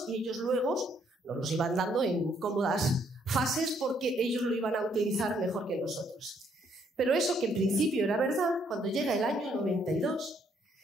y ellos luego nos los iban dando en cómodas fases porque ellos lo iban a utilizar mejor que nosotros. Pero eso que en principio era verdad, cuando llega el año 92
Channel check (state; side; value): normal; both; correlation 0.69